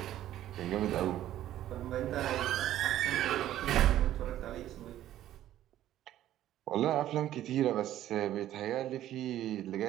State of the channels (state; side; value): quieter; left; 12.8 dB